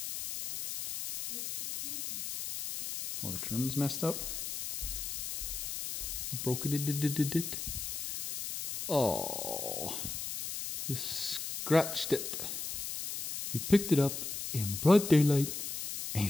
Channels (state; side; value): noise; left; hiss, 5 dB below the sound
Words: Oh, the trim's messed up. You broke it. Oh, you scratched it. You picked it up in broad daylight and